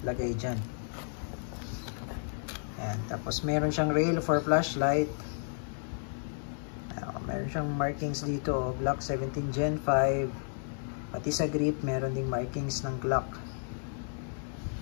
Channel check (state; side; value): silent; right; 56 dB below the other